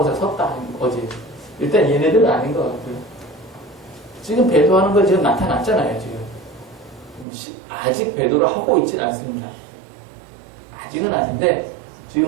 섰다. 어제. 일단 얘네들은 아닌 것 같고요. 지금 배도하는 거 지금 나타났잖아요. 지금 아직 배도를 하고 있진 않습니다. 아직은 아닌데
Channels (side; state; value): left; drops out; at 7.2 s